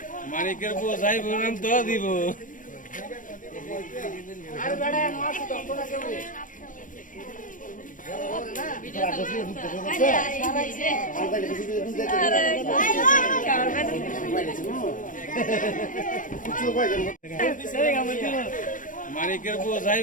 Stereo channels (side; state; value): right; late; 0.38 ms